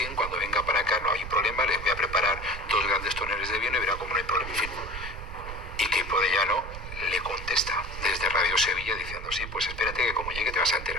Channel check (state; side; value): noise; right; rumble, 9 dB below the sound